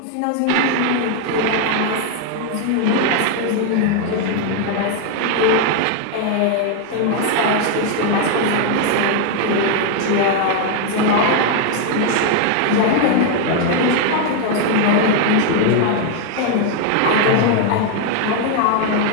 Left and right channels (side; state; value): both; different; correlation 0.01